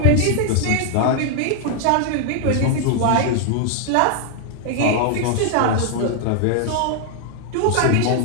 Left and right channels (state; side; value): different; both; correlation 0.00